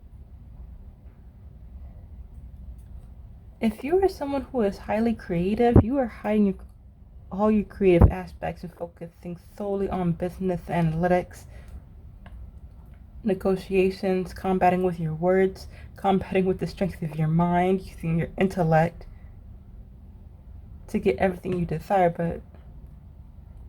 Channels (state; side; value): identical; both; correlation 1.00